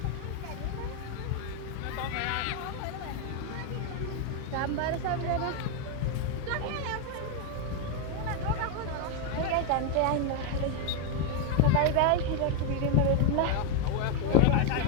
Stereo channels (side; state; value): both; different; correlation 0.01